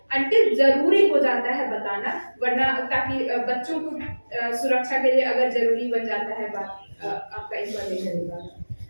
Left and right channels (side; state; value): both; inverted; correlation -1.00